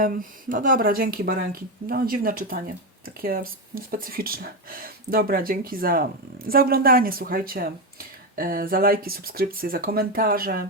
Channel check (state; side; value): normal; both; correlation 0.11